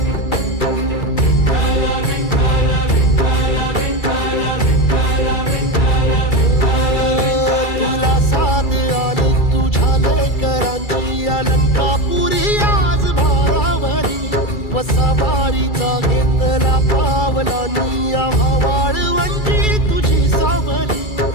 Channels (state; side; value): late; right; 2.3 ms